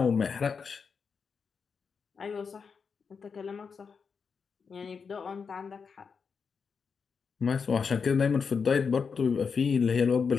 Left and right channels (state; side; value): quieter; right; 5.7 dB